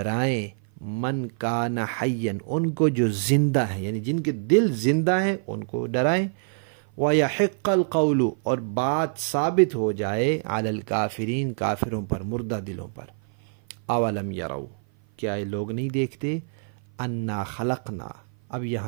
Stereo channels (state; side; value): silent; left; 56 dB below the other